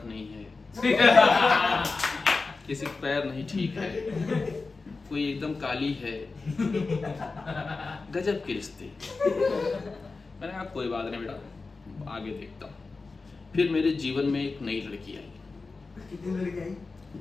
नहीं है, किसी का पैर नहीं ठीक है, कोई एकदम काली है, गजब के रिश्ते। मैंने कहा कोई बात नहीं बेटा, आगे देखता हूँ। फिर मेरे जीवन में एक नई लड़की आई। कितनी लड़की आई?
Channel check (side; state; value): right; quieter; 4.0 dB